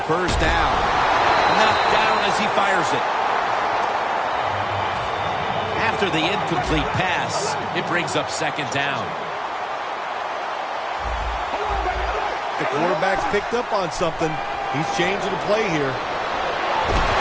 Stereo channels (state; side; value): identical; both; correlation 1.00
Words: 1st down. Knocked down as he fires it. After the incomplete pass, it brings up 2nd down. The quarterback's picked up on something. He's changing the play here.